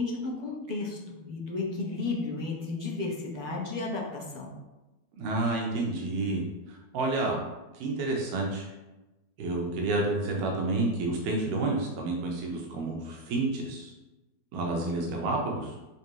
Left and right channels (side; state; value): left; late; 12 ms